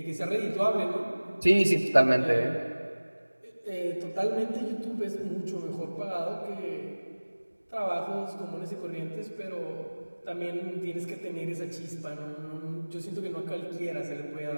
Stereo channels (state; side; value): inverted; both; correlation -1.00